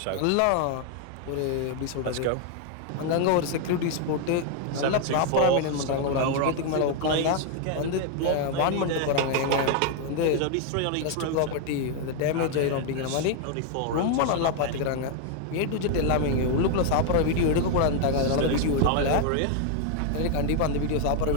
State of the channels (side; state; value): both; different; correlation 0.00